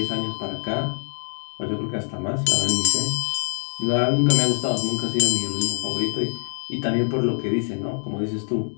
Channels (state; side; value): silent; right; 63 dB below the other